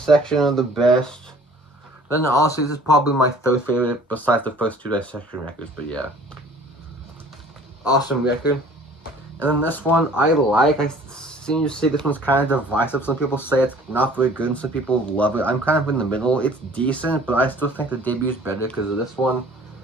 are the best. Then honestly, this is probably my third favorite besides the first two Dissection records, but yeah. Awesome record. And then this one, I like. I seem to say this one's kind of divisive. Some people say it's not very good, and some people love it. I'm kind of in the middle. It's decent, but I still think the debute's better because of this one.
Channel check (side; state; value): both; normal; correlation 0.51